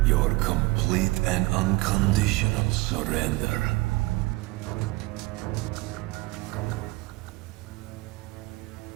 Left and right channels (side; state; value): left; quieter; 21.9 dB